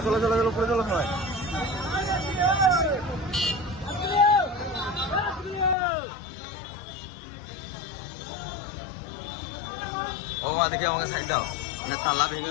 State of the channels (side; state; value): right; drops out; at 5.8 s